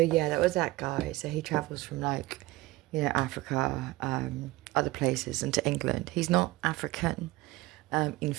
yeah, that was that guy. So he travels from Africa, other places, and to England. He's not African. In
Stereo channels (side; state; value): left; quieter; 19.6 dB